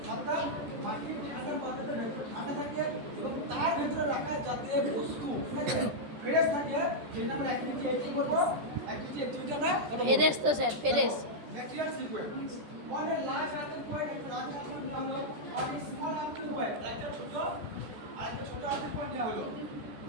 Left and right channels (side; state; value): left; late; 14 ms